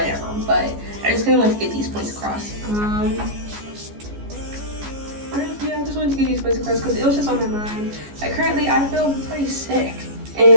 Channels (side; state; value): left; late; 14 ms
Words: but I just kind of want to get these points across. Yeah, I just wanted to get these points across because it was just on my mind. Like currently, I feel pretty sick,